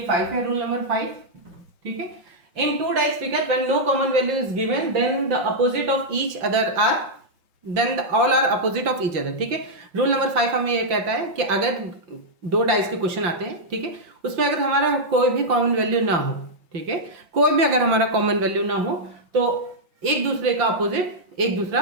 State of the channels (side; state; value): left; late; 5.8 ms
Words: 5 है, रूल नंबर 5, ठीक है। In 2 dice figure when no common value is given then the opposite of each other are all are opposite of each other, ठीक है। रूल नंबर 5 हमें ये कहता है कि अगर 2 डाइस के क्वेश्चन आते हैं, ठीक है, उसमें अगर हमारा कोई भी कॉमन वैल्यू ना हो, ठीक है, कोई भी अगर हमारा कॉमन वैल्यू ना हो तो एक दूसरे का अपोजिट एक दूसरा